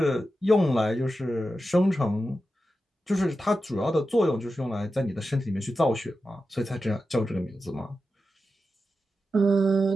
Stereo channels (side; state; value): both; normal; correlation 0.91